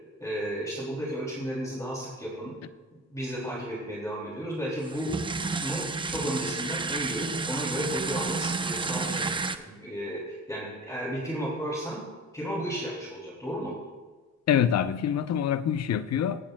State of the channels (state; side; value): normal; both; correlation 0.32